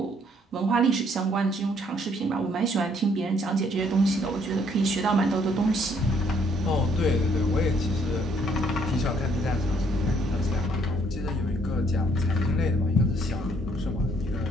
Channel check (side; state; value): both; normal; correlation 0.66